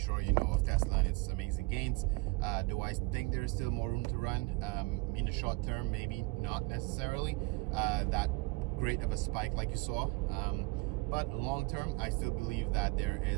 you know of Tesla and its amazing gains. Do I think there's still more room to run in the short term? Maybe not necessarily that great of a spike like you saw, but long term I still believe that there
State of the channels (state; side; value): quieter; left; 24.1 dB